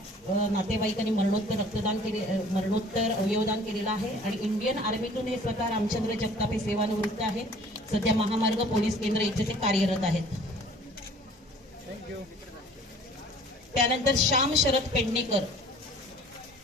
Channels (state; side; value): normal; both; correlation 0.51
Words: नातेवाईकांनी मरणोत्तर अवयवदान केलेलं आहे आणि इंडियन आर्मीतून हे स्वतः रामचंद्र जगताप हे सेवानिवृत्त आहेत। सध्या महामार्ग पोलीस केंद्र इथे ते कार्यरत आहेत। त्यानंतर श्याम शरद